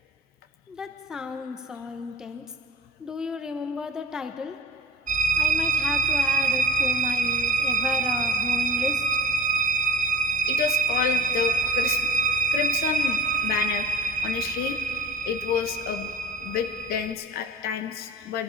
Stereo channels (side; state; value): both; normal; correlation 0.48